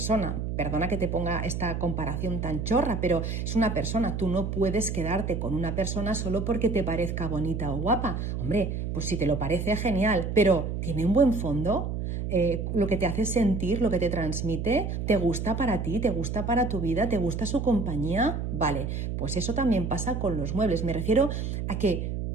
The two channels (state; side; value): noise; right; hum, 3 dB below the sound